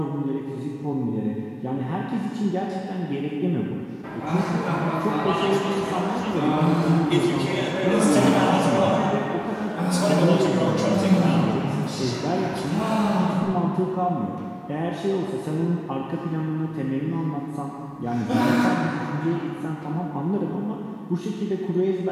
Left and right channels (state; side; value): identical; both; correlation 1.00